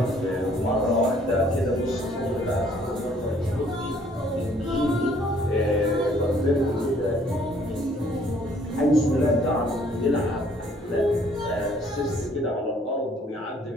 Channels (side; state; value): both; normal; correlation 0.61